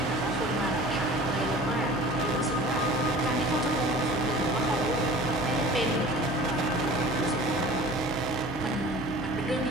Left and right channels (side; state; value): both; normal; correlation 0.43